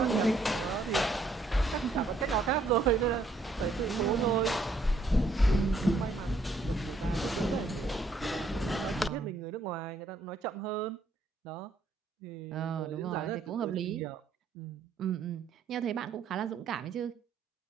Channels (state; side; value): quieter; left; 3.1 dB